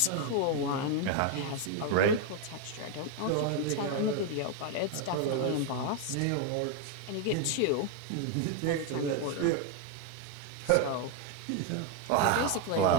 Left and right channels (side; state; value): both; different; correlation 0.01